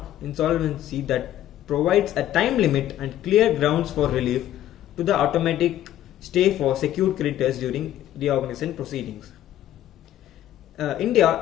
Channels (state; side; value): quieter; right; 12.5 dB